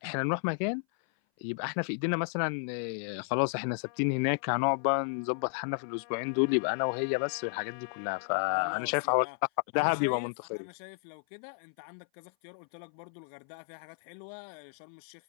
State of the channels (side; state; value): right; silent; 56 dB below the other